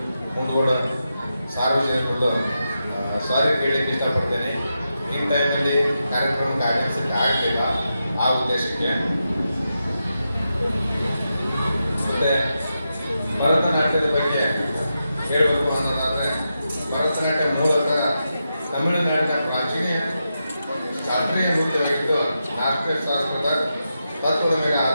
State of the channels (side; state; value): both; inverted; correlation -0.87